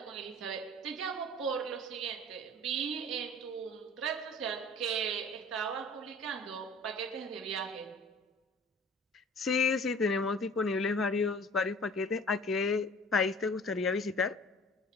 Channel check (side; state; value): both; normal; correlation 0.45